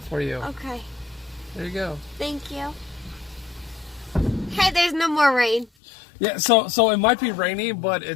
for you. Okay. There you go. Thank you. Hey, there's no more rain. Yeah, so it might be rainy, but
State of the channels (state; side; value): drops out; right; at 5.7 s